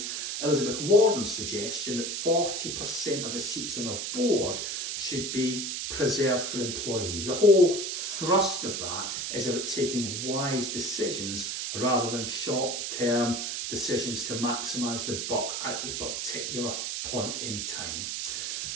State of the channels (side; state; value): right; noise; hiss, 3 dB below the sound